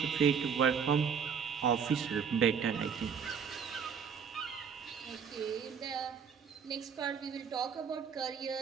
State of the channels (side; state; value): left; quieter; 6.8 dB